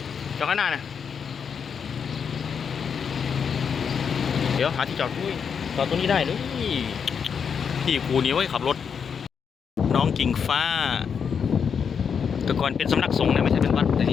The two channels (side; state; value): right; quieter; 6.8 dB